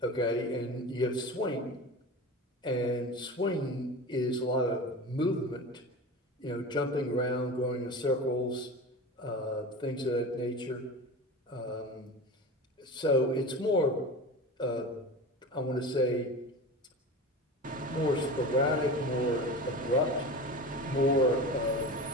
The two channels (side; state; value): both; normal; correlation 0.31